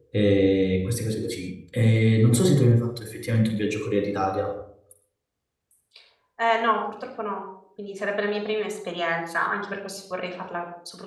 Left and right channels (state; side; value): identical; both; correlation 1.00